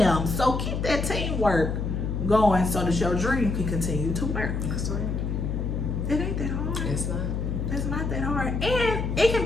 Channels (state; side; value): noise; left; hum, 2 dB below the sound